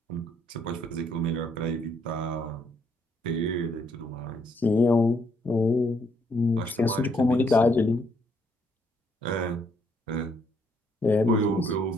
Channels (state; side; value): normal; both; correlation 0.70